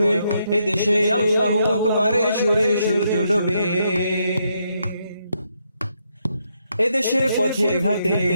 এদেশে আল্লাহু আকবারের সুরে সূর্য ডোবে। এদেশের পথে ঘাটে,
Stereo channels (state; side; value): inverted; both; correlation -0.78